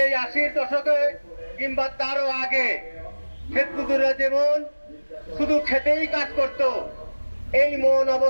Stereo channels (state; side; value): inverted; both; correlation -1.00